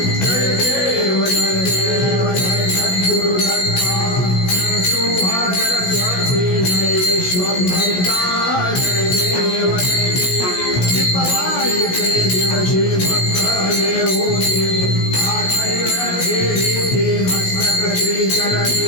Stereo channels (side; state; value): right; late; 16 ms